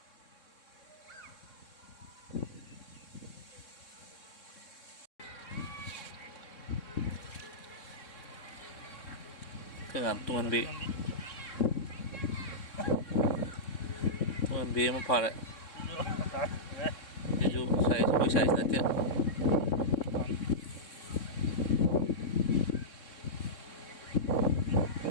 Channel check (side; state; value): right; late; 3.6 ms